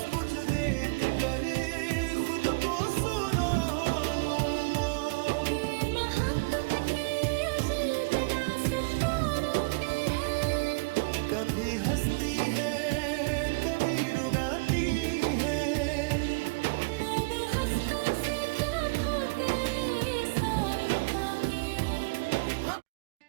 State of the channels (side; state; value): left; quieter; 29.1 dB